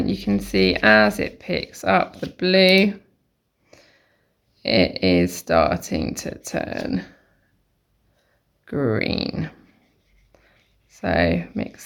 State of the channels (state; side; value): identical; both; correlation 1.00